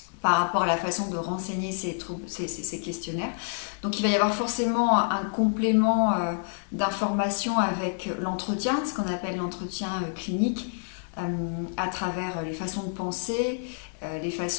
par rapport à la façon de renseigner ces questionnaires. Donc il va y avoir forcément un complément d'information avec l'entretien, ce qu'on appelle l'entretien clinique, à travers les façons de penser, les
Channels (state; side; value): silent; right; digital silence